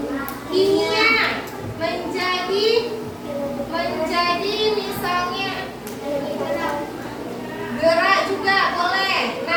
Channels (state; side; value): identical; both; correlation 1.00